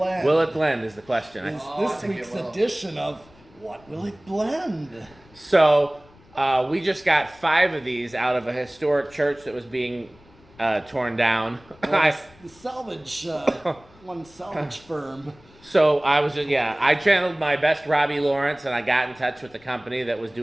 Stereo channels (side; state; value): left; noise; rumble, 27 dB below the sound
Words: Will it blend is the question. Is this week's edition of What Will It Blend? So we just got 5 of these out of a historic church that was being torn down. The salvage, one salvage firm. So I was I channeled my best Robbie Lawrence, and I got in touch with the company that was